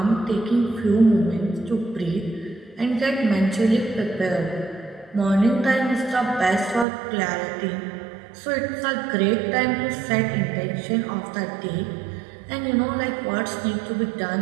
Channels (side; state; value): left; drops out; at 6.9 s